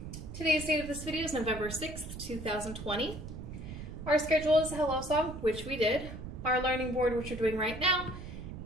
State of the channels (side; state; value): right; noise; rumble, 10 dB below the sound